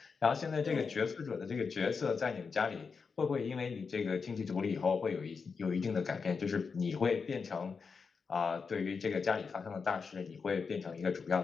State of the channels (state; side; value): quieter; right; 5.3 dB